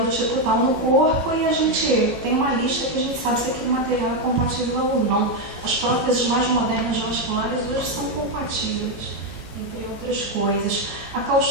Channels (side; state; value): both; normal; correlation 0.05